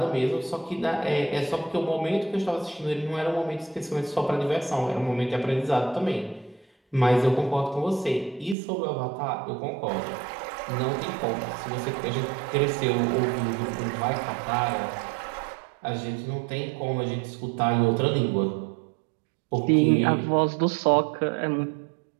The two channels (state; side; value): drops out; left; at 8.6 s